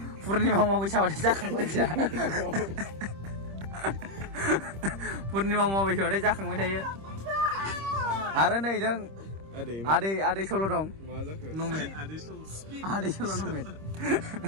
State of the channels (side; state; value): left; late; 26 ms